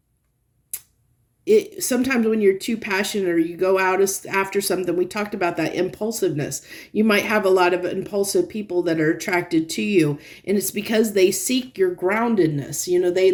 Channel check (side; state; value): both; identical; correlation 1.00